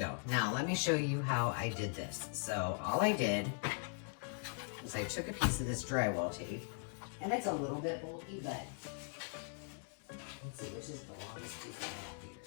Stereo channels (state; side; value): silent; right; 51 dB below the other